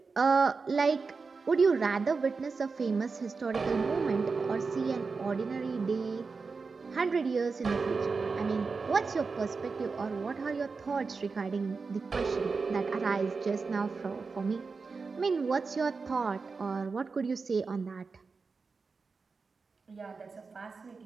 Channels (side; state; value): left; quieter; 4.6 dB